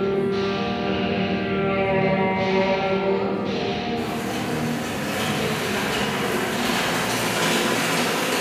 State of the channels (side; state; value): both; identical; correlation 1.00